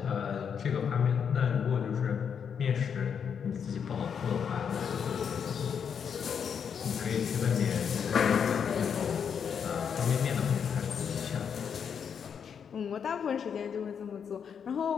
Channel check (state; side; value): quieter; right; 7.2 dB